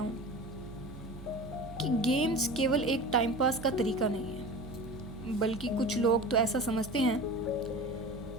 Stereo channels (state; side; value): noise; right; hum, 14 dB below the sound